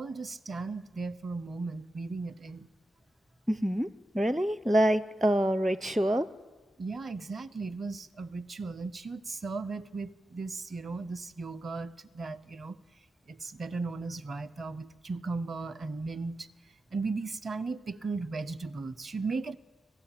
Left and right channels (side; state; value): both; normal; correlation 0.91